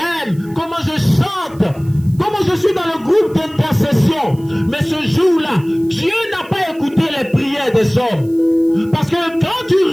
comment je chante, comment je suis dans le groupe d'intercession. Mais ce jour-là, Dieu n'a pas écouté les prières des hommes. Parce que quand tu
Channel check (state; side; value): noise; right; hiss, 27 dB below the sound